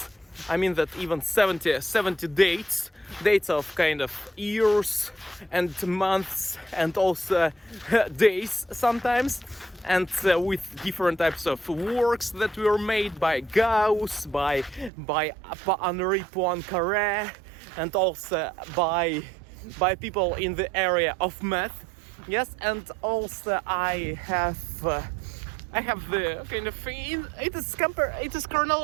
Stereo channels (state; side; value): drops out; left; at 14.9 s